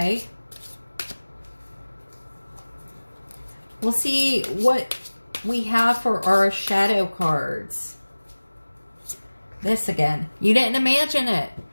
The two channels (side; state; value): both; inverted; correlation -1.00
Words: We'll see what we have for our shadow cards. This again. You didn't imagine it.